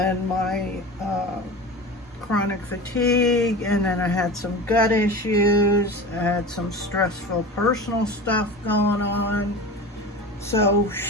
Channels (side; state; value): both; normal; correlation 0.32